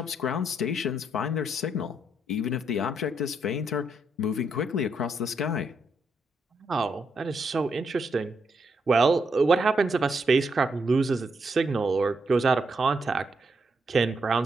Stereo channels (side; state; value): both; normal; correlation 0.79